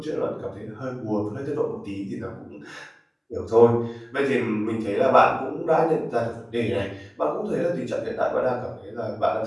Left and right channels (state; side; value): identical; both; correlation 1.00